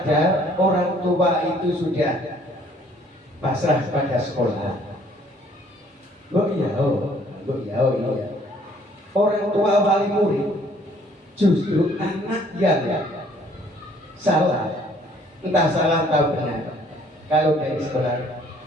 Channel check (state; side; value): normal; both; correlation 0.60